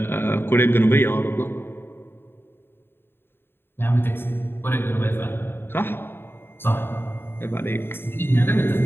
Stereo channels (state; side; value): late; right; 0.11 ms